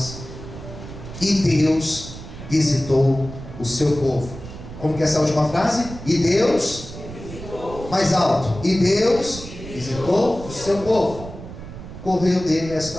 e Deus visitou o seu povo. Como que é essa última frase? E Deus visitou. Mais alto. E Deus visitou o seu povo. Correu dele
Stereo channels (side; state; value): right; noise; rumble, 12 dB below the sound